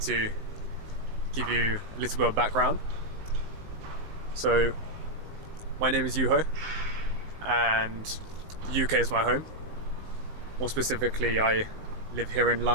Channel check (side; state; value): left; late; 19 ms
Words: to give you a little bit of background. So my name is Yuho and the UK is my home. More specifically, I live here in